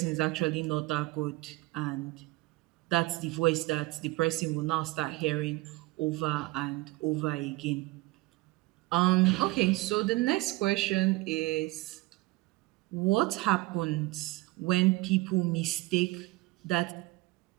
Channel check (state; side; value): quieter; left; 21.0 dB